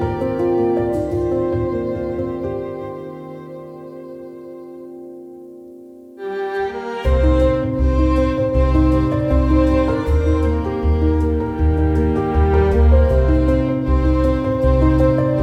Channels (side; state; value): both; identical; correlation 1.00